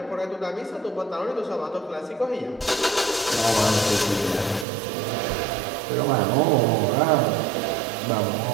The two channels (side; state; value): left; drops out; at 4.7 s